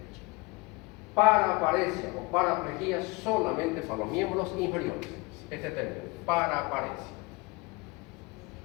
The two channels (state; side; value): quieter; right; 24.8 dB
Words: Paraparesia o paraplejía solamente para los miembros inferiores. Este término, paraparesia.